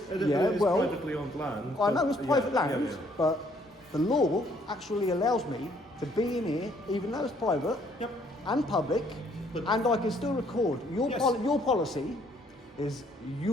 It Yeah, is well, privately owned land. I know it's private land, Yeah. but the law actually allows me to be in here, even though it's private Yep. and public, But- and I can still record. Your Yes. your policy is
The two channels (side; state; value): both; normal; correlation 0.65